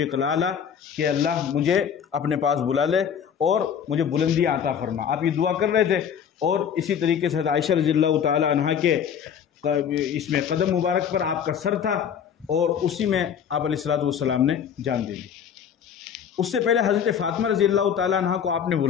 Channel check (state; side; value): quieter; right; 8.0 dB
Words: الاعلیٰ، کہ اللہ مجھے اپنے پاس بلا لے اور مجھے بلندی عطا فرما۔ آپ یہ دعا کر رہے تھے، اور اسی طریقے سے عائشہ رضی اللہ تعالی عنہا کے اس میں قدم مبارک پر آپ کا سر تھا، اور اسی میں آپ علیہ الصلوۃ والسلام نے جان دے دی۔ اس سے پہلے حضرت فاطمہ رضی اللہ تعالی عنہا کو آپ نے